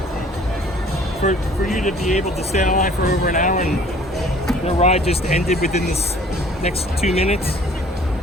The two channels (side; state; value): both; normal; correlation 0.53